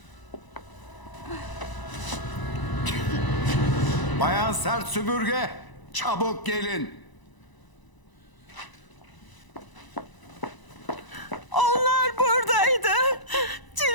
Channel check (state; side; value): late; right; 1.0 ms